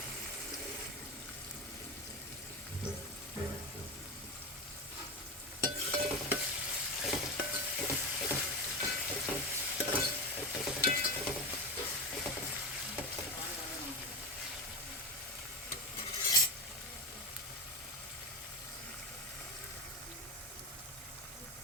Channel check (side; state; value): both; normal; correlation 0.18